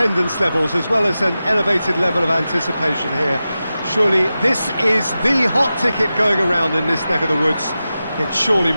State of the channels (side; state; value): both; inverted; correlation -0.93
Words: levels as well as an elevated level of anticipation here. Surely this is the hot ticket going around in this neck of the woods. It surely